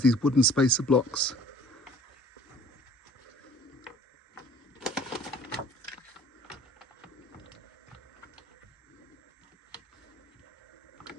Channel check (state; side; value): normal; both; correlation 0.51